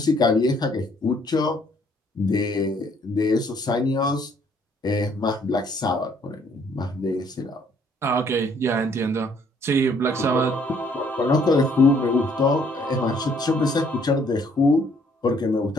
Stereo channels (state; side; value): normal; both; correlation 0.64